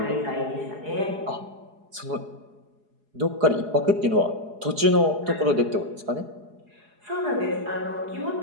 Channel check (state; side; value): late; left; 4.8 ms